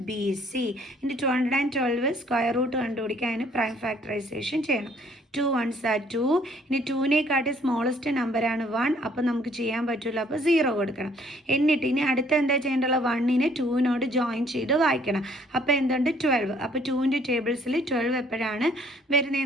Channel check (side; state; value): both; normal; correlation 0.61